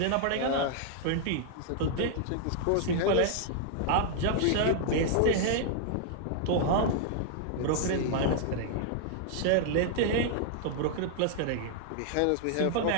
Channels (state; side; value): different; both; correlation 0.00